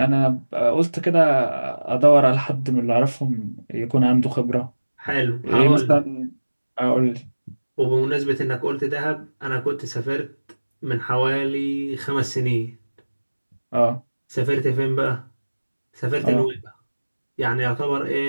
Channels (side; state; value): both; inverted; correlation -1.00